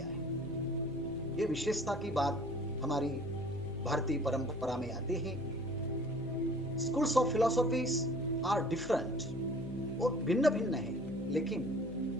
है। ये विशेषता की बात हमारी भारतीय परंपरा में आती है। Schools of philosophies are different, वो भिन्न भिन्न है, लेकिन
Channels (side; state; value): left; noise; hum, 14 dB below the sound